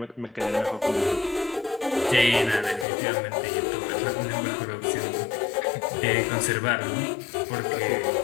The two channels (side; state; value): right; drops out; at 2.9 s